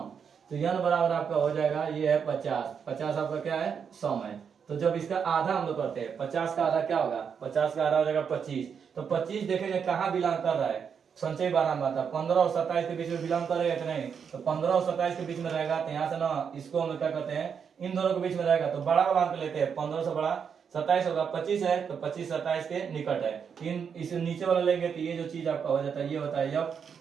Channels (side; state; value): left; quieter; 6.9 dB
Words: तो n बराबर आपका हो जाएगा ये है 50 आपका क्या है सम है। तो जब इसका आधा हम लोग करते हैं 50 का आधा क्या होगा 50 का आधा हो जाएगा 25। तो 25 देखेंगे कहाँ बिलोंग कर रहा है संचयी बारंबारता 15 और 27 के बीच में बिलोंग करेगा कि नहीं, तो 15 और 27 के बीच में रहेगा। तो यहाँ से ना इसको हम क्या करते हैं इन दोनों के बीच में रहेगा तो बड़ा वाला अंक लेते हैं, 15 से बड़ा 27 होगा, 25 है तो 25 27 के निकट है। इस नीचे वाला लेंगे तो ये जो चीज आपका हो जाता है ये होता है यफ,